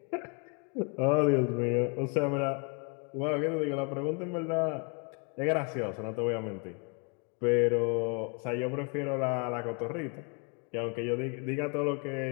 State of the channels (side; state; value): right; quieter; 35.0 dB